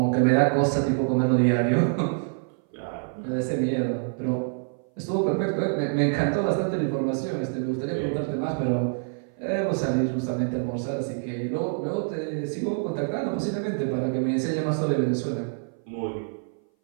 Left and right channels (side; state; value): left; silent; 58 dB below the other